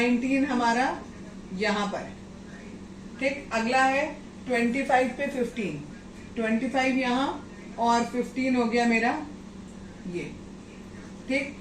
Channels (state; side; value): identical; both; correlation 1.00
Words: हमारा यहाँ पर। ठीक, अगला है 25 पे 15, 25 यहाँ और 15 हो गया मेरा ये। ठीक,